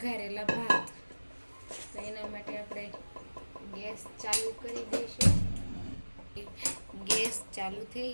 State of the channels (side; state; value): both; inverted; correlation -1.00